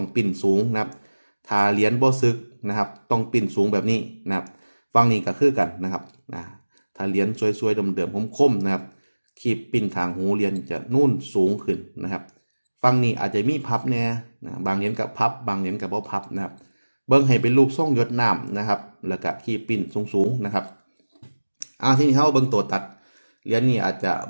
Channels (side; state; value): both; inverted; correlation -1.00